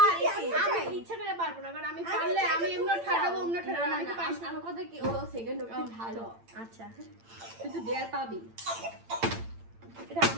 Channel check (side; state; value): left; late; 8.8 ms